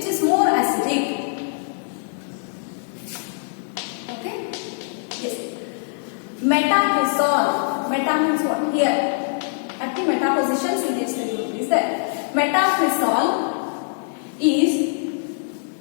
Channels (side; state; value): right; silent; digital silence